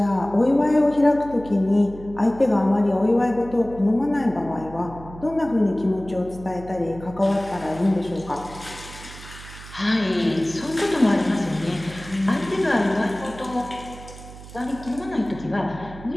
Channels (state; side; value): noise; right; hum, 16 dB below the sound